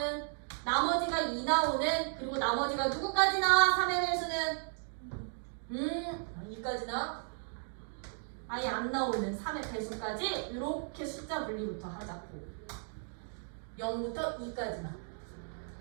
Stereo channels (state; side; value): silent; left; 54 dB below the other